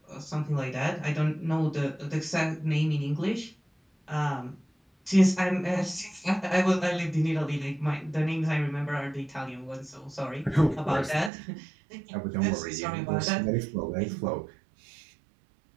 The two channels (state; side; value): drops out; left; at 11.3 s